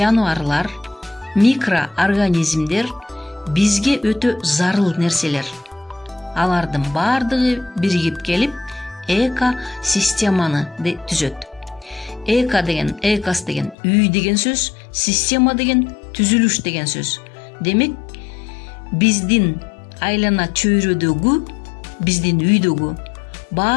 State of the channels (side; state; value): right; drops out; at 13.8 s